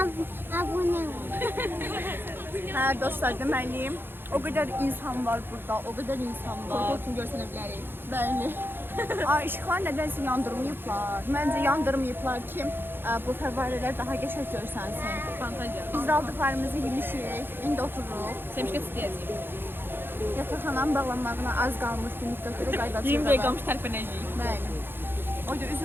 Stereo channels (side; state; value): left; late; 0.10 ms